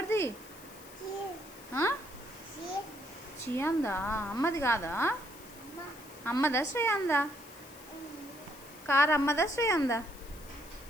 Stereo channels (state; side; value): noise; left; hiss, 19 dB below the sound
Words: చియాందా? అమ్మది కాదా? అమ్మదా శ్రేయాందా? కారు అమ్మదా శ్రేయాందా?